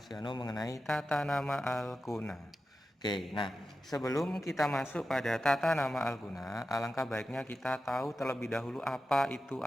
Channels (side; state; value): both; normal; correlation 0.92